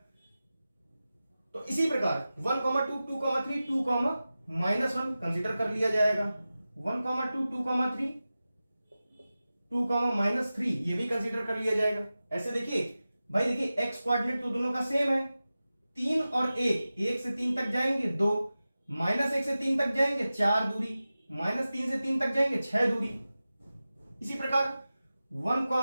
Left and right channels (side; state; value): both; inverted; correlation -0.95